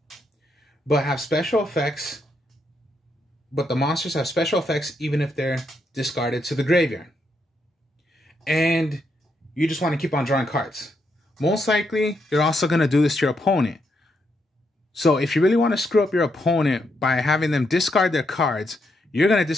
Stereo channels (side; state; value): both; normal; correlation 0.79